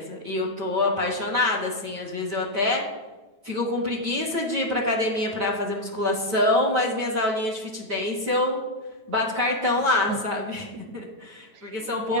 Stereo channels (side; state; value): left; late; 9.1 ms